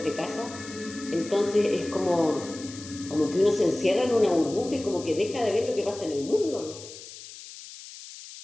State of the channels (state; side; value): noise; left; hiss, 15 dB below the sound